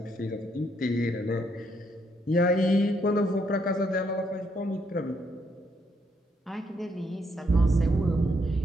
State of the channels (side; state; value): both; normal; correlation 0.74